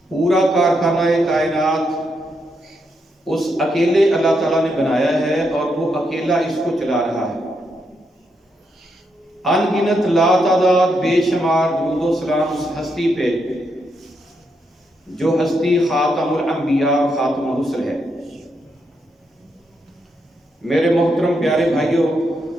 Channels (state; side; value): normal; both; correlation 0.80